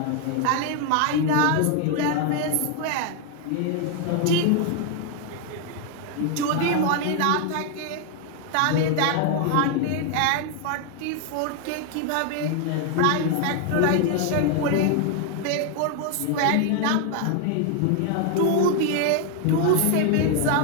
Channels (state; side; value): different; both; correlation 0.01